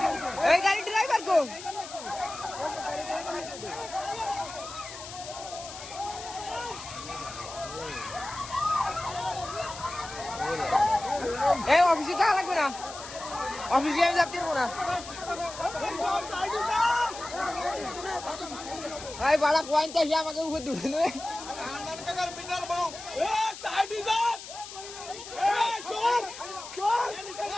এই গাড়ি ড্রাইভার কোন এই অফিসে যাওয়া লাগবে না অফিসে আমি যাতে পারবো না ভাই বাড়া পয়েন্ট চাইছে আমাকে উপর দুটো নেবে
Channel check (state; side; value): noise; left; hiss, 12 dB below the sound